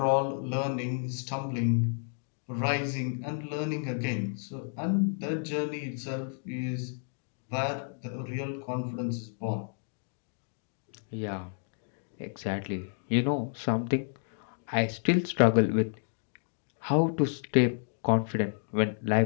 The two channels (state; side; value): silent; right; 56 dB below the other